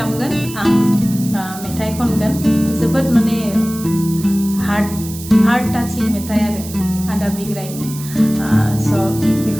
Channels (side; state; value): right; noise; hiss, 13 dB below the sound